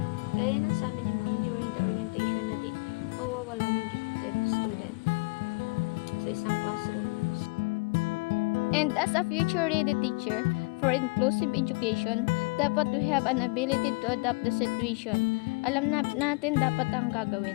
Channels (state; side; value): quieter; right; 28.9 dB